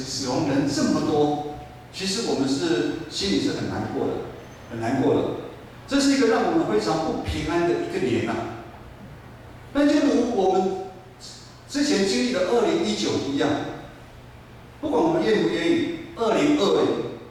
亡人这么多，其实我们心里是很难过的，很难过的。这是一个让我们非常不平安的一个年但就如我们之前经历的2019一样，不管我们愿不愿意，2020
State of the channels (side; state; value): both; identical; correlation 1.00